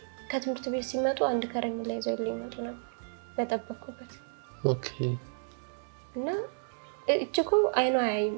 ከትምህርት ቤት ሲመጡ አንድ ከረሜላ ይዘው ይመጡ ነበር በጠበቅኩበት። እና እችኮ አይኗ አያይም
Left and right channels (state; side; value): silent; left; digital silence